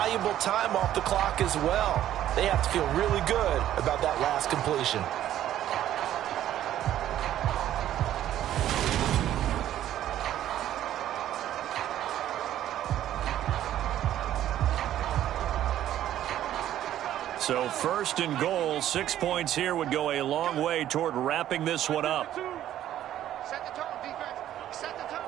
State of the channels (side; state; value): left; quieter; 12.1 dB